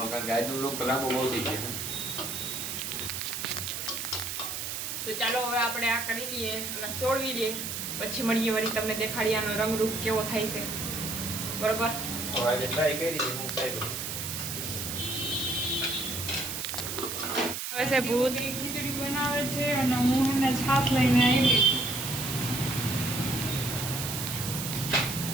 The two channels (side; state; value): right; noise; hiss, 4 dB below the sound